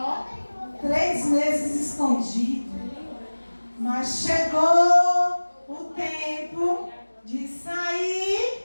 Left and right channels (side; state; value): both; inverted; correlation -1.00